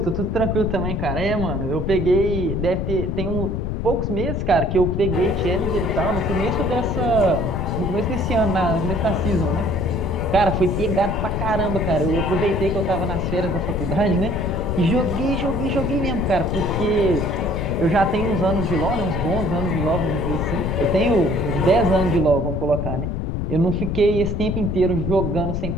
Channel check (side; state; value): left; noise; rumble, 2 dB below the sound